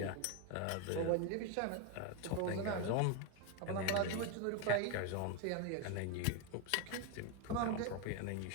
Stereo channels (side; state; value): both; different; correlation 0.02